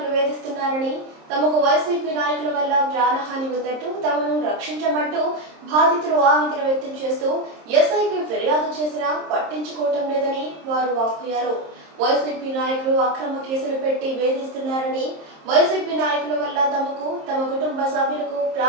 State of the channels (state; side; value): late; left; 26 ms